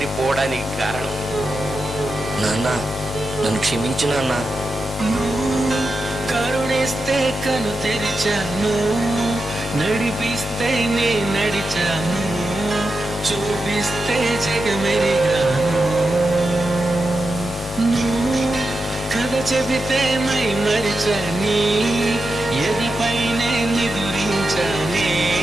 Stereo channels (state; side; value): normal; both; correlation 0.89